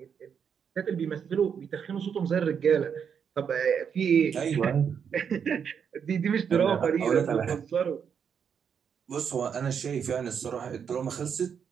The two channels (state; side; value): quieter; left; 7.3 dB